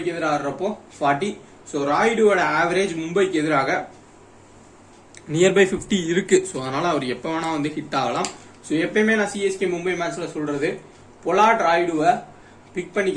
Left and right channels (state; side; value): identical; both; correlation 1.00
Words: எதிராக ஆடுறப்போ 40. ஸோ ராய்டுவோட ஆவரேஜ் மும்பைக்கு எதிராக நியர்பை 50 இருக்கு. ஸோ அதனால அவர் எப்ப வேணா வந்து ஹிட் ஆகலாம். ஸோ எப்பயுமே நான் சிஎஸ்கே மும்பை மேட்ச்ல சொல்றது பொலாட், ராய்டுவை பிக்